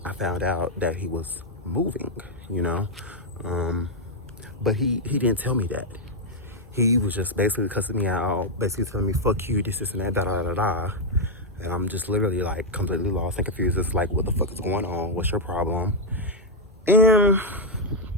I found out that he was moving, you know? But he didn't tell me that. He was just basically cussing me out, basically telling me, fuck you, this, and that, da-da-da-da. And I'm just literally like completely lost and confused. It's like, what the fuck is going on? What's your problem? And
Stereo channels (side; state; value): both; normal; correlation -0.01